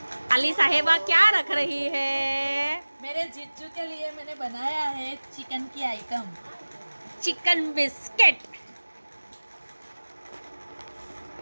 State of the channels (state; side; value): inverted; both; correlation -1.00